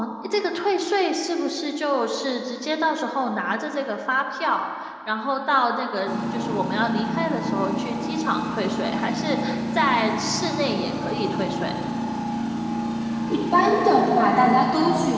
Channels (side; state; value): both; identical; correlation 1.00